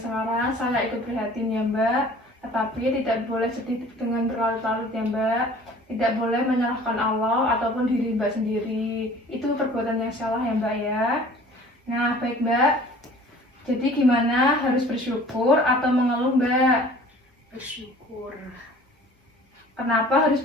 sekarang, saya ikut prihatin ya Mbak. Tetapi tidak boleh sedih dengan berlarut-larut ya Mbak. Tidak boleh menyalahkan Allah ataupun diri Mbak sendiri. Itu perbuatan yang salah ya Mbak ya. Nah baik Mbak, jadi gimana, harus bersyukur atau mengeluh Mbak? Bersyukur. Kenapa harus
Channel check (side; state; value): both; normal; correlation 0.48